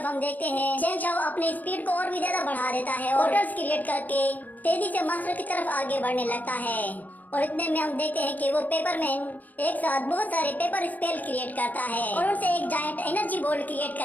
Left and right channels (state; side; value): late; right; 0.081 ms